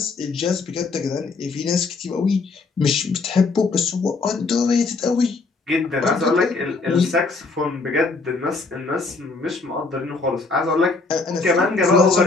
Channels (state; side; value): quieter; right; 4.0 dB